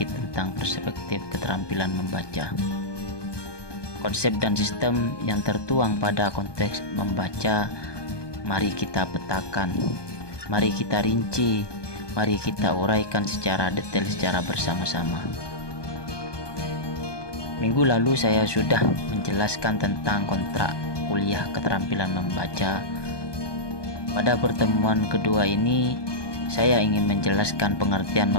tentang perspektif keterampilan membaca. Konsep dan sistem yang tertuang pada konteks membaca, mari kita petakan, mari kita rinci, mari kita uraikan secara detail secara bersama-sama. Minggu lalu saya sudah menjelaskan tentang kontrak kuliah keterampilan membaca. Pada pertemuan kedua ini, saya ingin menjelaskan pengertian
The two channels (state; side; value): late; right; 1.2 ms